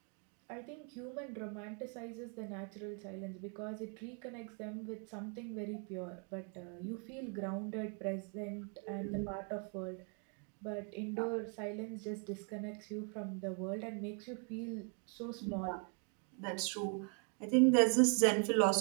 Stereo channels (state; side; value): quieter; left; 39.1 dB